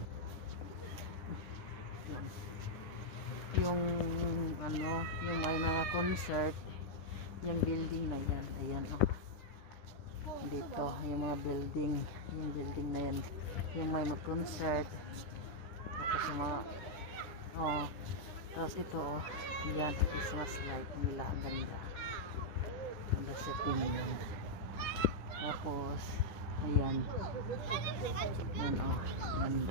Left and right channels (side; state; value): right; late; 10 ms